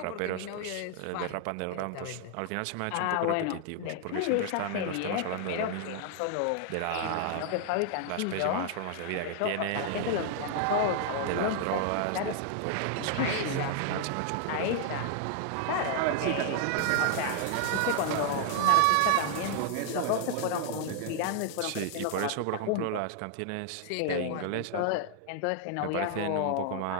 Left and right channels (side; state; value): both; different; correlation 0.00